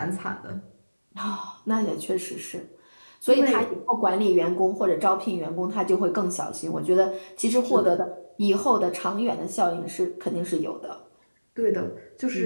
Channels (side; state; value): both; inverted; correlation -1.00